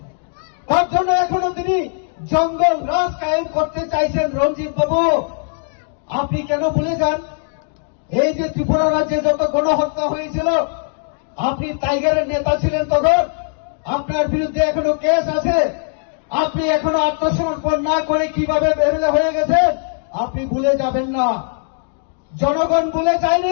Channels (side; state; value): right; silent; digital silence